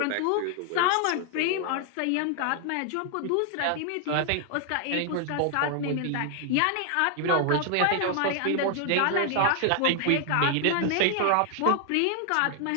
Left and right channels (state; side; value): different; both; correlation 0.00